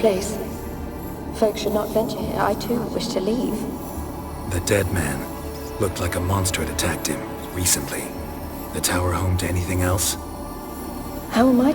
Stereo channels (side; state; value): both; identical; correlation 1.00